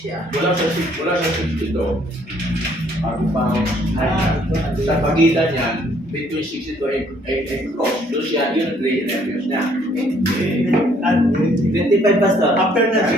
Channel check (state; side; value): normal; both; correlation 0.64